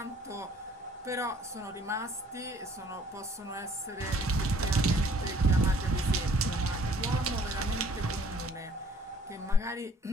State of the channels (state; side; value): normal; both; correlation 0.58